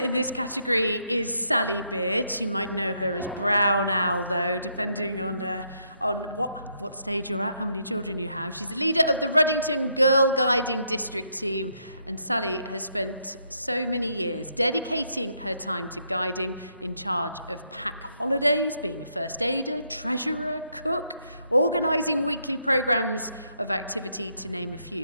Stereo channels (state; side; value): inverted; both; correlation -0.75